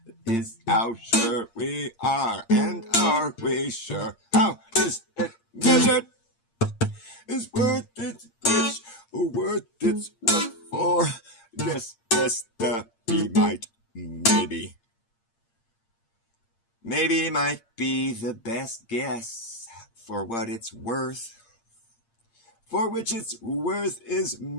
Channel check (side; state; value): right; late; 8.7 ms